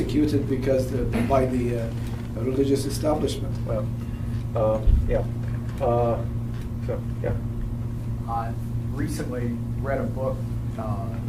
because by the religious establishment. Well, I recently read a book,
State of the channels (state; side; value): identical; both; correlation 1.00